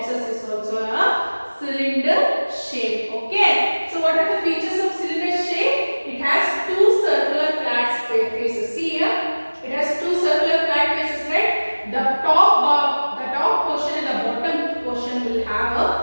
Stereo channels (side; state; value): both; inverted; correlation -1.00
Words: is also a cylinder shape. Okay. So what are the features of cylinder shape? It has 2 circular flat faces. See here, it has 2 circular flat faces, right? The top portion and the bottom portion will have a